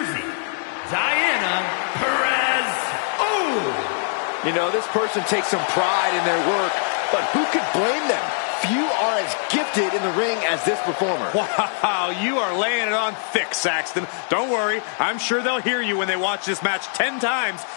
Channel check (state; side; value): silent; right; digital silence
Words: Diana Perez. Oh! You know, this person takes some pride in their work, but who could blame them? Few are as gifted in the ring as this performer. Wow, you are laying it on thick, Saxton. Don't worry, I'm sure they'll hear you when they watch this match 10 times